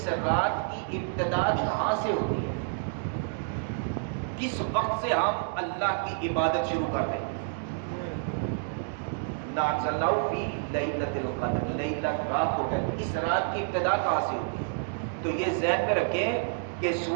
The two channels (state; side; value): silent; left; digital silence